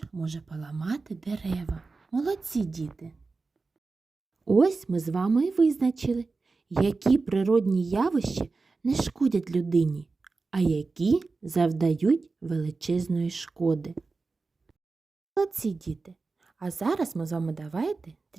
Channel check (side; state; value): left; quieter; 4.0 dB